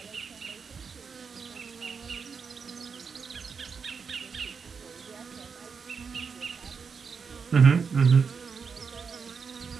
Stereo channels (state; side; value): quieter; left; 5.7 dB